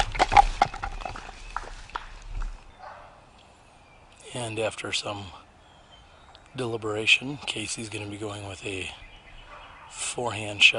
And after some deliberation, Casey's going to be going with a forehand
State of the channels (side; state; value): both; identical; correlation 1.00